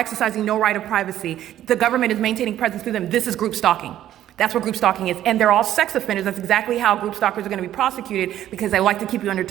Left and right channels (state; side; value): quieter; left; 12.2 dB